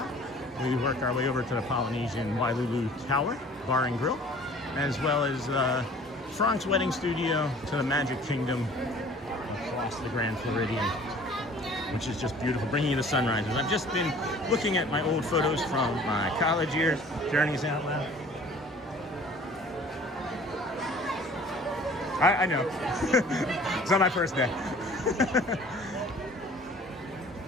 We work our way over to the Polynesian Wailulu Tower, Bar and Grill, as well as Frank's Wedding Studio to the Magic Kingdom across the Grand Floridian, which is just beautiful, bringing you the sunrises. I've just been looking at my old photos from my college years, Journeys Out Loud. I know. It's not my first day.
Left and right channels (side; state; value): both; normal; correlation 0.49